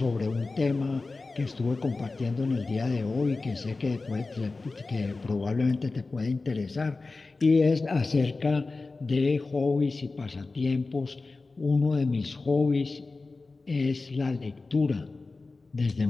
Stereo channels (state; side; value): quieter; right; 3.7 dB